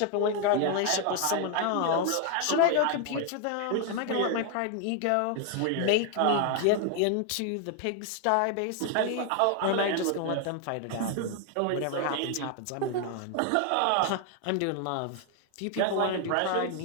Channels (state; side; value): different; both; correlation 0.00